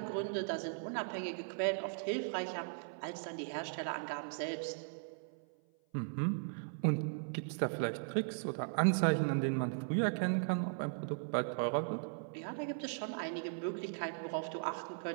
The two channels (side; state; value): left; silent; 52 dB below the other